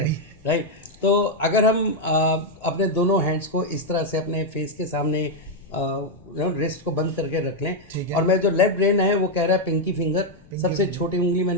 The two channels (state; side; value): noise; left; rumble, 26 dB below the sound